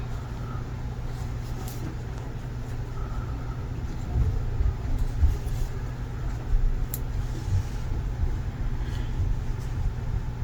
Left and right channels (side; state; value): both; identical; correlation 1.00